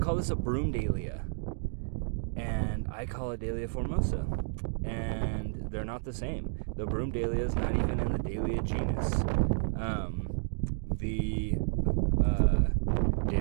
this a broom dahlia, and I call it Dahlia formosa, and they're not the same. The broom dahlia is not even in the Dahlia genus. The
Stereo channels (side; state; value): left; silent; digital silence